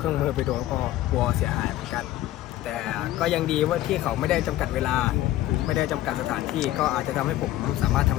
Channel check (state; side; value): quieter; right; 14.8 dB